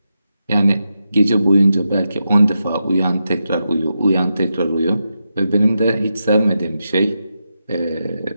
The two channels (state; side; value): inverted; both; correlation -0.87